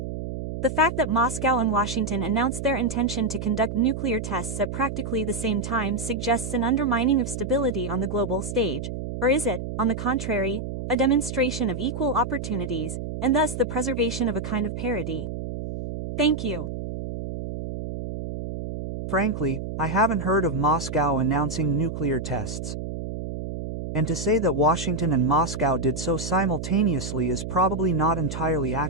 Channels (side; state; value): right; noise; hum, 6 dB below the sound